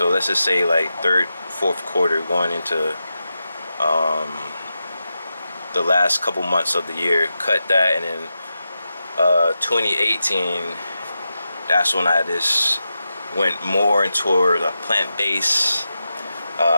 let's just say like third, fourth quarter, going into the last couple months of the year. Cut that, and then 2018, that's when I just went more toward a plant-based,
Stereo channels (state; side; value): inverted; both; correlation -0.90